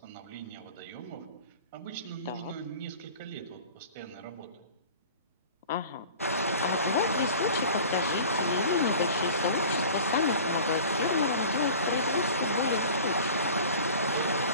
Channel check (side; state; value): both; inverted; correlation -0.41